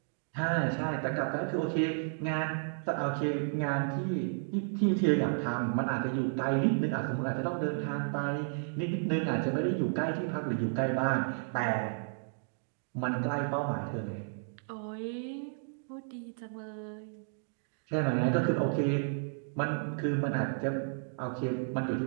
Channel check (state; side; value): silent; left; digital silence